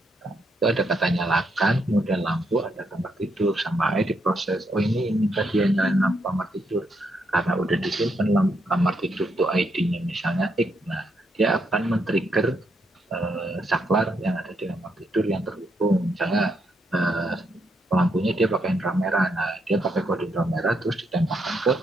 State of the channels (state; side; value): normal; both; correlation 0.78